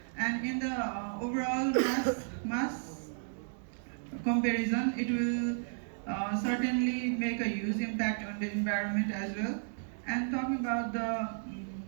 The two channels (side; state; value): left; silent; digital silence